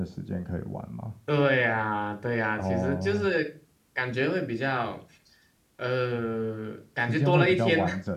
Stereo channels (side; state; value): both; identical; correlation 1.00